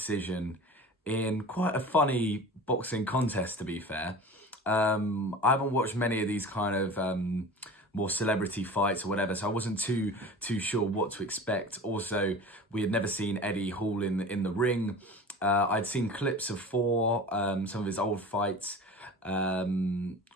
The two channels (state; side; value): normal; both; correlation 0.37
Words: in quite a funny boxing contest, to be fair. I haven't watched many of these kind of more celebrity fights or whatever, so I wasn't too sure what to expect. Also, we had never seen Eddie Hall in the ring. I'd seen clips of Thor, some of his old fights, or